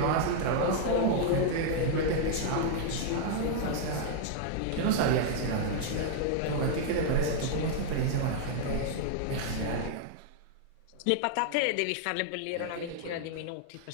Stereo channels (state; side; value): different; both; correlation -0.01